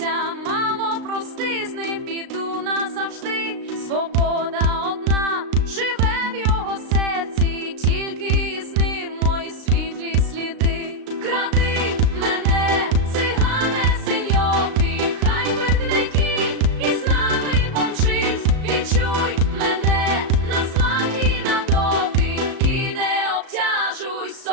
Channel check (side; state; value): left; late; 36 ms